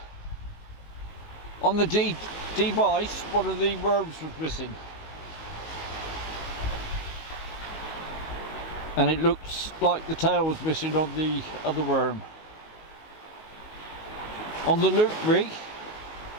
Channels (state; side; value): late; right; 19 ms